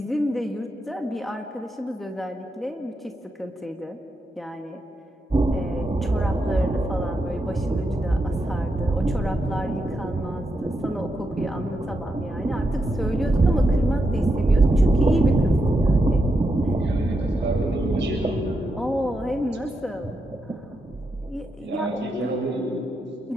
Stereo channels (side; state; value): both; normal; correlation 0.84